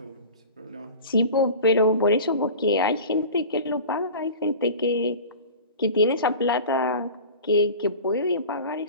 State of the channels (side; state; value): both; inverted; correlation -0.37